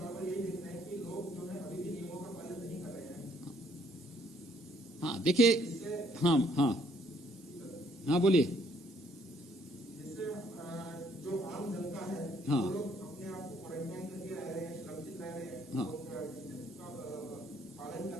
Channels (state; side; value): normal; both; correlation 0.66